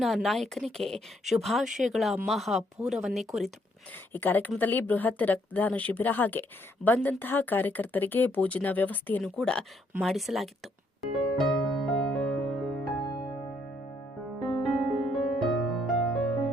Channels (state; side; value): normal; both; correlation 0.71